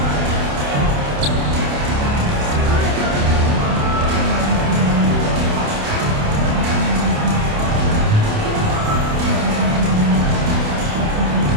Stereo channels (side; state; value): left; late; 28 ms